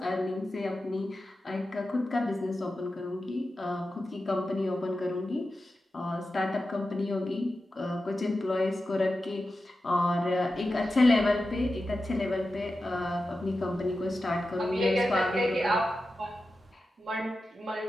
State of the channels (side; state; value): both; normal; correlation 0.92